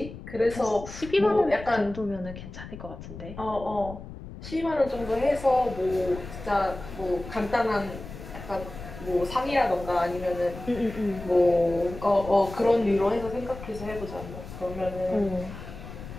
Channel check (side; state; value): left; noise; rumble, 12 dB below the sound